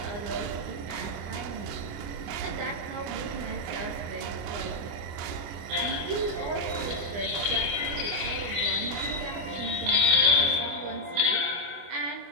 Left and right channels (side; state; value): left; late; 25 ms